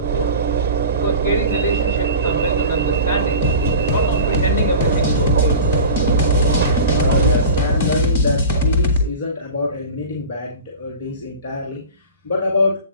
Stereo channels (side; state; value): both; inverted; correlation -0.35